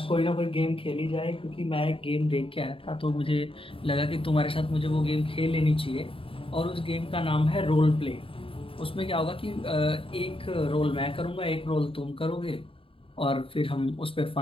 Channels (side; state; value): right; late; 0.26 ms